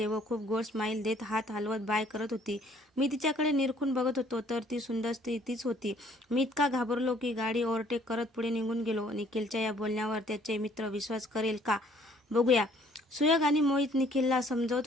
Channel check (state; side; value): normal; both; correlation 0.60